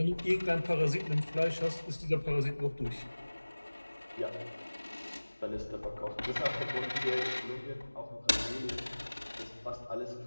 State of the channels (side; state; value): both; inverted; correlation -1.00